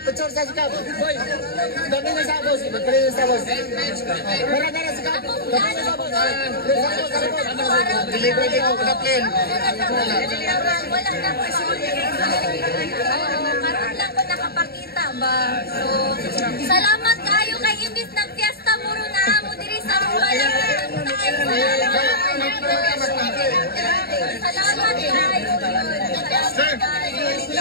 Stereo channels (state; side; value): late; right; 0.46 ms